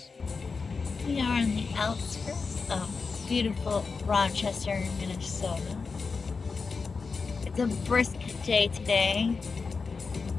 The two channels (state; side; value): quieter; right; 4.7 dB